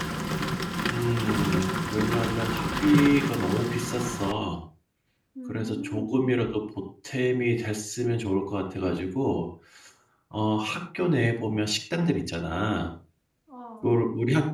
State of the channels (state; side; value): identical; both; correlation 1.00